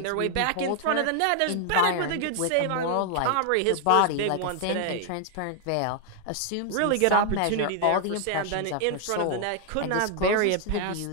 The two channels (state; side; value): different; both; correlation 0.00